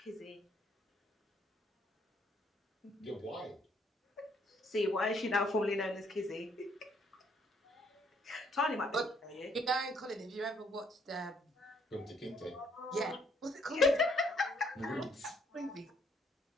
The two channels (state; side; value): normal; both; correlation 0.67